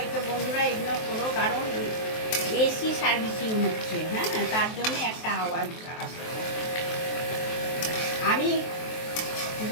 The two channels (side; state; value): right; late; 23 ms